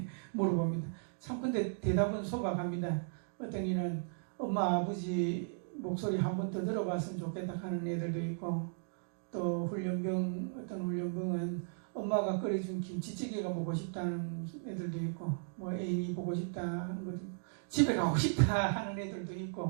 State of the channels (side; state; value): left; silent; digital silence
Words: 물어봅니다. 참 근데 대답은 소박합니다. 어떤 이는 엄마 아버지 목소리 한 번 더 들어봤으면 좋겠다 하는 애들도 있고, 또 어떤 훈련병은 엄마가 끓여준 김치찌개가 먹고 싶다는 애들도 있고, 뭐 애인이 보고 싶다 하는 것도 있고, 집에 가고 싶다 하는 애들도